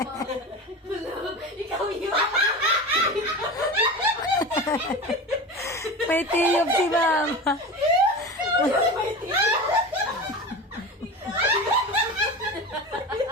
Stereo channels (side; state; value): both; normal; correlation 0.29